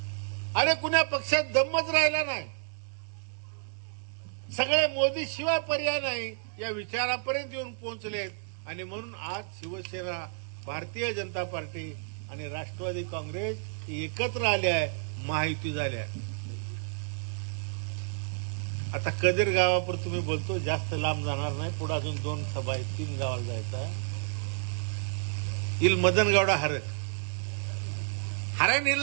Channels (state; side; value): silent; left; digital silence